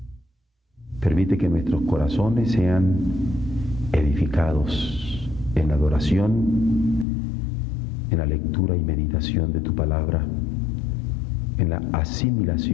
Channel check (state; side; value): drops out; right; at 7.1 s